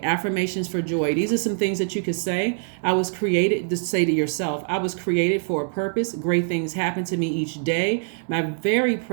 affirmations for joy. These are some things that you could say. I was created to say to yourself, I was created for a purpose. Great things happen to me each day. My very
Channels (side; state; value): left; silent; digital silence